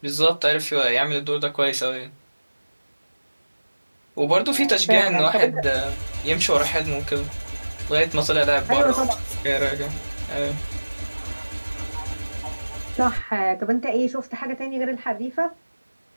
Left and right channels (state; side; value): inverted; both; correlation -1.00